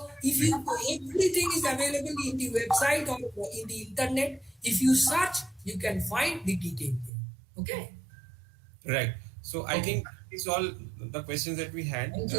if everything is available in the website or in the internet, if you search, you can find the detail there. Okay. Right. So I think it's all the questions that we had.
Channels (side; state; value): left; drops out; at 7.1 s